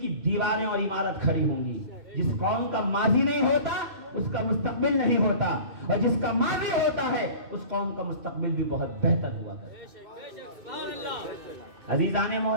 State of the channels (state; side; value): late; left; 2.6 ms